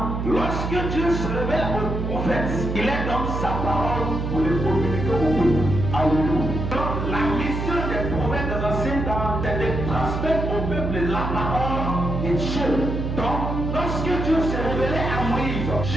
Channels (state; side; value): noise; right; hum, 3 dB below the sound